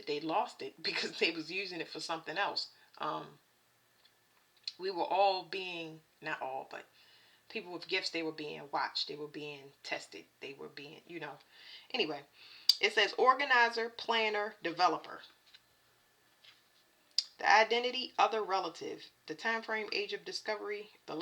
they lost it because they was using it for something else. We were all being, not all, but people with gifts, they were being watched. They were being tested. They were being, Anyway, it says organizer, planner, developer. The identity, other relative. The time frame, age of discovery. The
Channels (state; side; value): identical; both; correlation 1.00